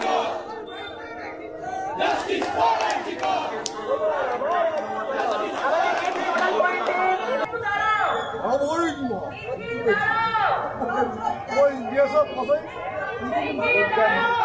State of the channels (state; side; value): identical; both; correlation 1.00